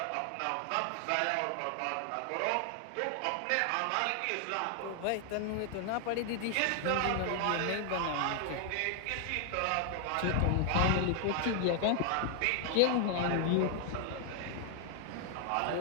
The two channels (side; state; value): both; different; correlation 0.00